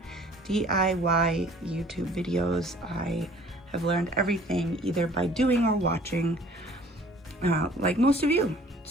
DIY YouTube videos. I have learned everything either by doing or watching, like most of you.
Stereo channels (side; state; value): both; normal; correlation 0.53